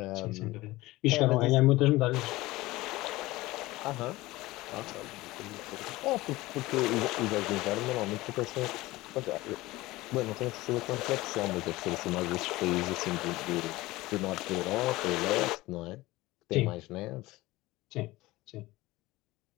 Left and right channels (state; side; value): quieter; right; 19.2 dB